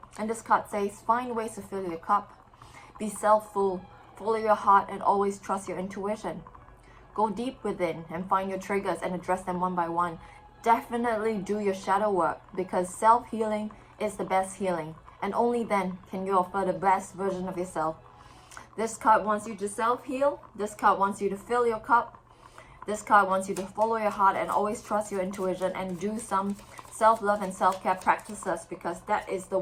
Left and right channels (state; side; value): identical; both; correlation 1.00